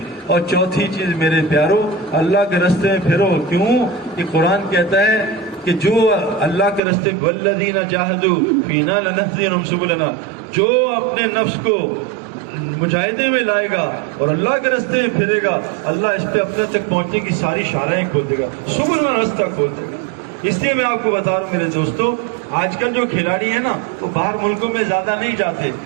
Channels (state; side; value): drops out; left; at 6.8 s